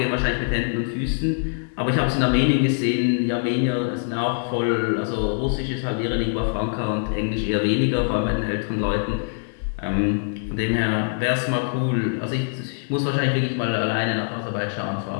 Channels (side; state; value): right; silent; digital silence